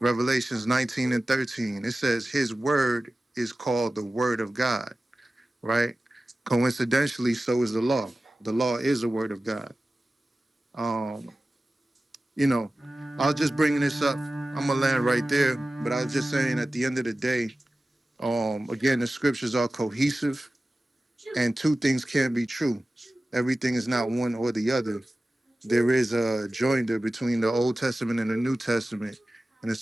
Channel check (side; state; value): both; normal; correlation 0.95